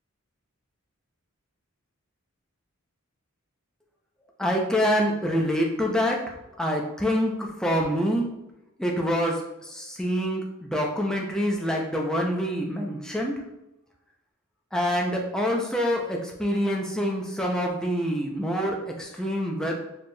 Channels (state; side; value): normal; both; correlation 0.65